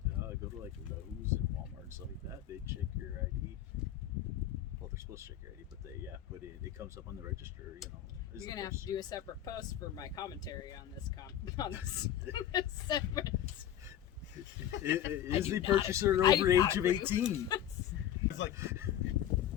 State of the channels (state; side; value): quieter; right; 11.2 dB